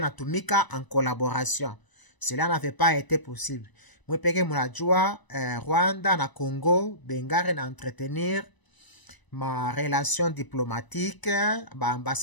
en collaboration. Cela n'avait pas été possible. Mwe peke munajua Rwanda na Congo bengare na entretenir ma relation diplomatique, ba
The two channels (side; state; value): right; late; 1.0 ms